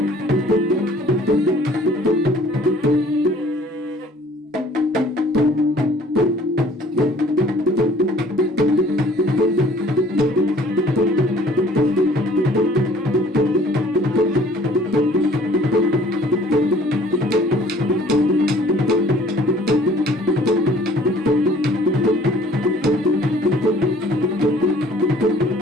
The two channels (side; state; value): both; normal; correlation 0.54